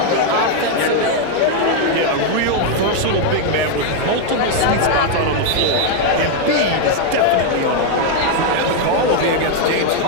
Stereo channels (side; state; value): both; different; correlation 0.01